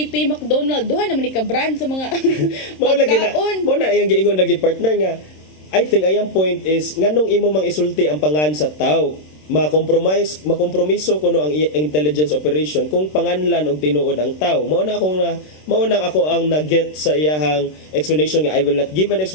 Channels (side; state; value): right; late; 26 ms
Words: McDonald duha naman ni ka brand sa mga pagkaon. Mo na yang giingon lagi partner nga I think ayang point is nganong imo mang isulti ang pangan sa tao makompromiso kuno ang intelligence operation kung panganlan og tinuod ang tao. Mao na ako ang na-get sa iyahang explanation nga I will not give an